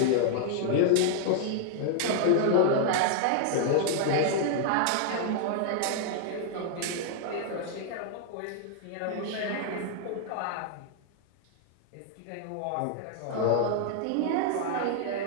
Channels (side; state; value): both; different; correlation -0.01